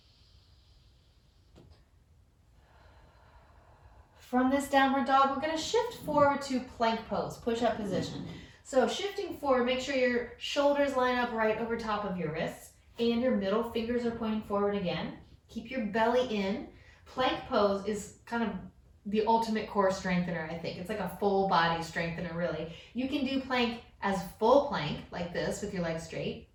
From this downward dog, we're going to shift forward to plank pose, push-up position. So shifting forward, make sure your shoulders line up right over top of your wrists and your middle fingers are pointing forward again. Keep your belly in. Plank pose is kind of the ultimate core strengthener, I think. It's like a full body strengthener, really. You can do plank as full plank, like this, with your legs straight,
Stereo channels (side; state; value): both; identical; correlation 1.00